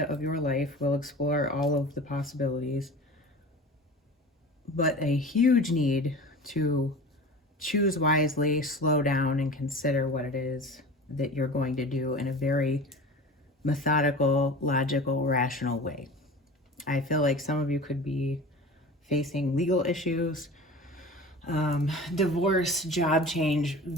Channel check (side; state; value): both; normal; correlation 0.36